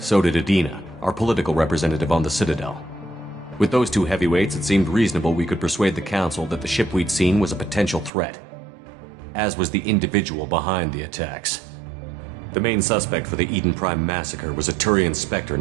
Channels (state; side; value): drops out; left; at 8.1 s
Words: did Adina, our political representative on the Citadel. With those two heavyweights, it seemed reasonable we could persuade the Council that the ship we'd seen was a potential threat, as was the individual behind the attacks. The main suspect for the Eden Prime massacre was a Turian Spectre